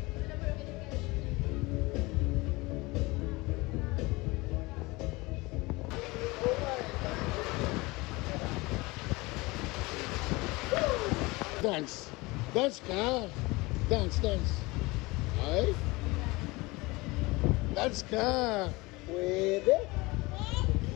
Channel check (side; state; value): right; quieter; 23.1 dB